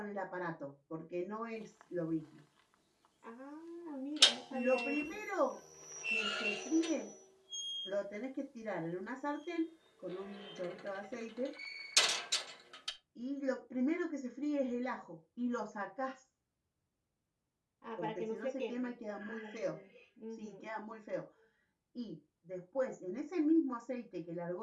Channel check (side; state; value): both; identical; correlation 1.00